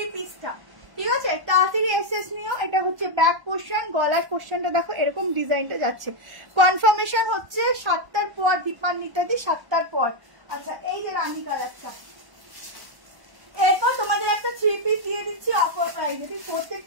পিসটা, ঠিক আছে, তাড়াতাড়ি এসএস নিও। এটা হচ্ছে ব্যাক পোর্শন, গলার পোর্শনটা দেখো এরকম ডিজাইনটা যাচ্ছে। কনফার্মেশন হচ্ছে 7টার পর, দীপান্বিতাদি 7টার পর। আচ্ছা এই যে রানী কালারটা, এরপর তোমাদের একটা 3 পিস দিয়ে দিচ্ছি অফার প্রাইস, ঠিক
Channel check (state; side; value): late; left; 1.1 ms